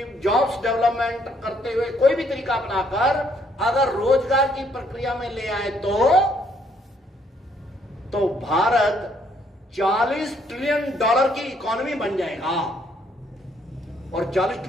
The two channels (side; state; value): both; normal; correlation 0.68